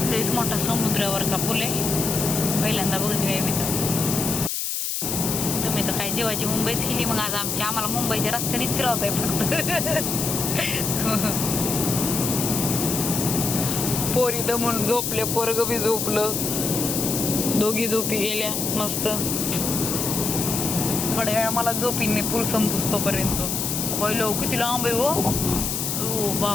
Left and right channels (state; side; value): noise; left; hiss, 2 dB below the sound